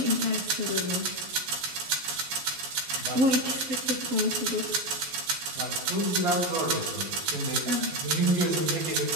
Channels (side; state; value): left; late; 11 ms